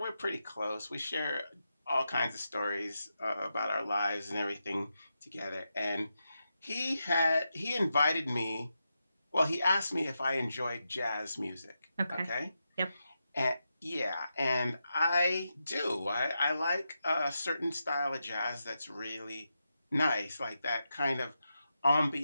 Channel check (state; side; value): inverted; both; correlation -0.87